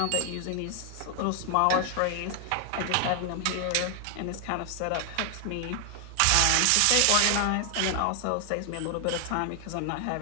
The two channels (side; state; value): both; different; correlation 0.00